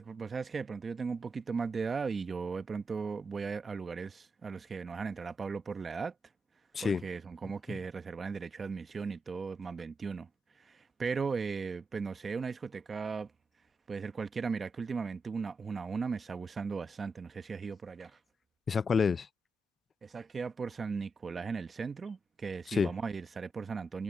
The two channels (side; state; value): both; normal; correlation 0.87